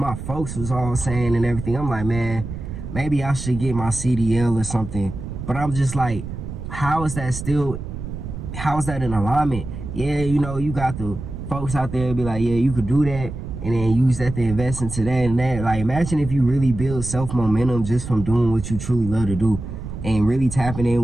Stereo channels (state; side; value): noise; right; rumble, 8 dB below the sound